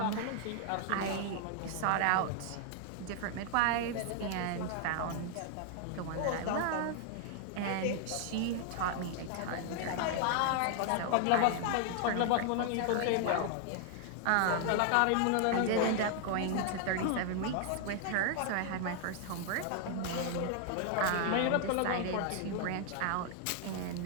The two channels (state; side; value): different; both; correlation 0.00